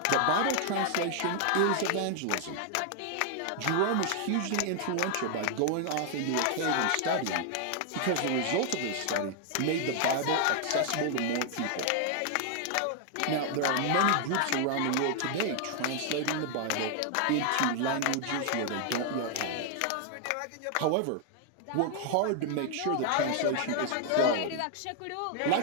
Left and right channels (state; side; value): different; both; correlation 0.00